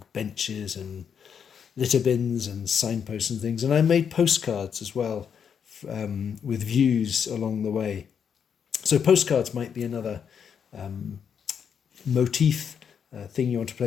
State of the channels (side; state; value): right; quieter; 7.4 dB